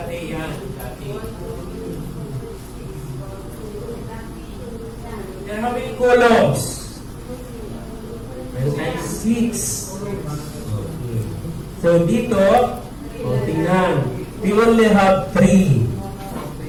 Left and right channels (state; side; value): identical; both; correlation 1.00